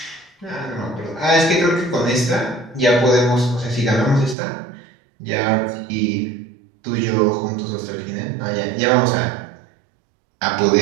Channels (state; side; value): drops out; left; at 4.4 s